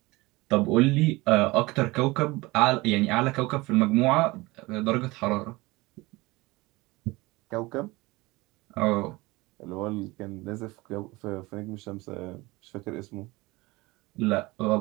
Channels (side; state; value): left; quieter; 22.0 dB